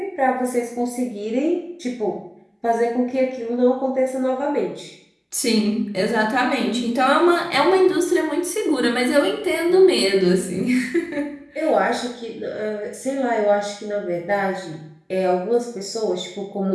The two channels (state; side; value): identical; both; correlation 1.00